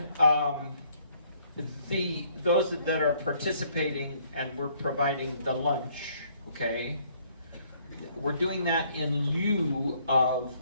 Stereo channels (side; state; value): both; inverted; correlation -0.64